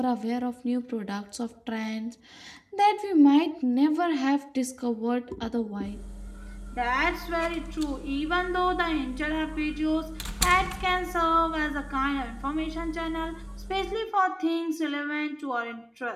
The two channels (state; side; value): identical; both; correlation 1.00